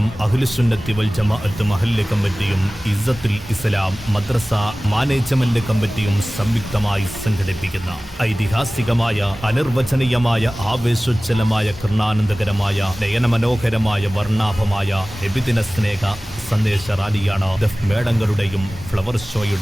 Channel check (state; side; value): normal; both; correlation 0.97